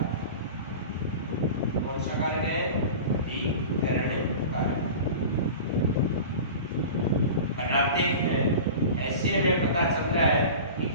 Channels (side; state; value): both; inverted; correlation -0.34